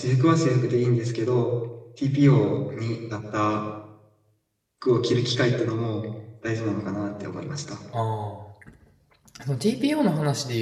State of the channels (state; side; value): identical; both; correlation 1.00